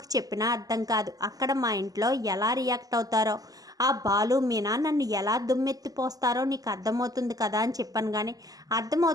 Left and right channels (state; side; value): late; left; 0.17 ms